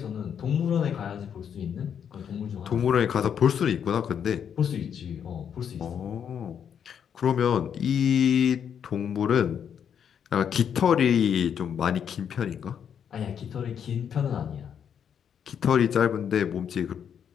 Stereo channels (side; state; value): right; quieter; 8.1 dB